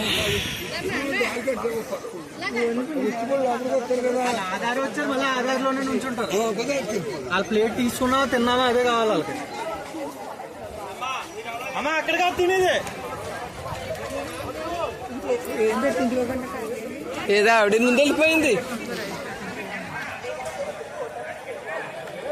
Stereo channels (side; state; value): both; identical; correlation 1.00